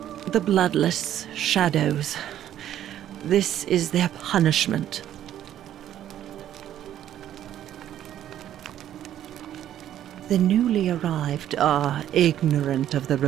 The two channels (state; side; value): quieter; left; 11.3 dB